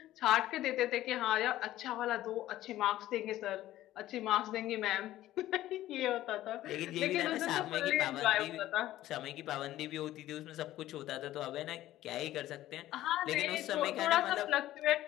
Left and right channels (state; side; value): quieter; right; 14.5 dB